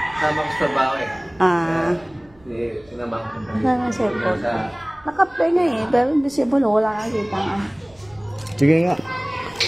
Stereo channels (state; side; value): noise; right; rumble, 28 dB below the sound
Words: Sama ko sa trabaho eh. Ah, Sinama ko. wala na cellphone. Sa Naka-play nga eh, pero invisible. Wala nakita nga. Sige nga.